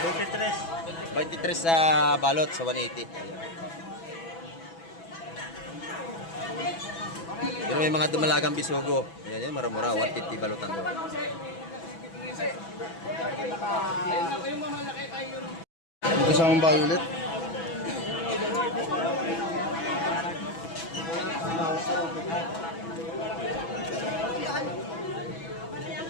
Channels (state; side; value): late; right; 6.1 ms